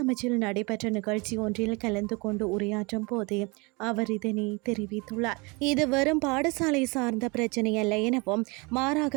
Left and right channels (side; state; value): left; quieter; 27.7 dB